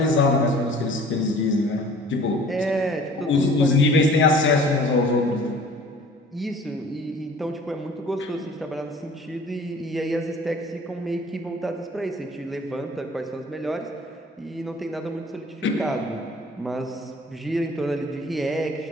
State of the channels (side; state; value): both; normal; correlation 0.49